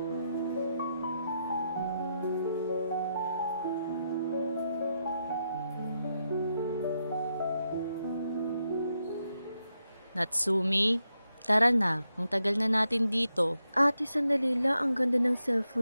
Natsumi, tara na. Ang tagal na natin dito. Ate, sandali lang. Ang ganda ng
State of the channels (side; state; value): both; inverted; correlation -0.83